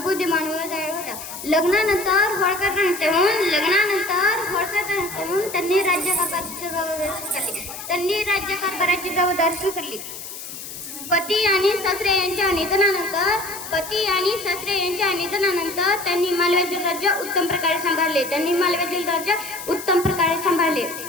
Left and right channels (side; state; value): left; noise; hiss, 11 dB below the sound